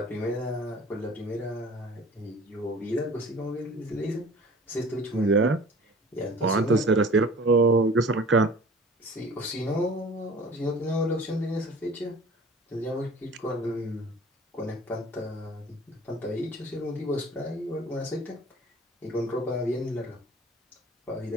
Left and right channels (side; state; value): both; normal; correlation 0.45